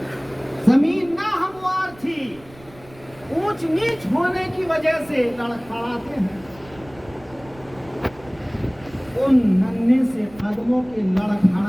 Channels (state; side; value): noise; right; rumble, 23 dB below the sound